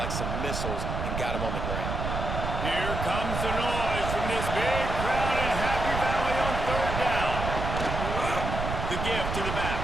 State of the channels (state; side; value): noise; right; rumble, 3 dB below the sound